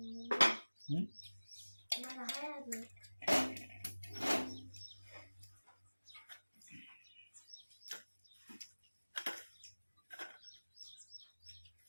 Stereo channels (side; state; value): both; inverted; correlation -1.00